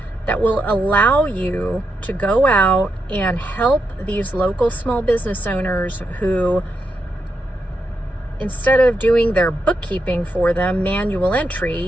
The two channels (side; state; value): both; normal; correlation 0.84